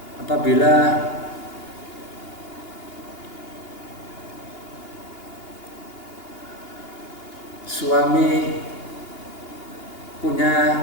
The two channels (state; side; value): late; right; 2.8 ms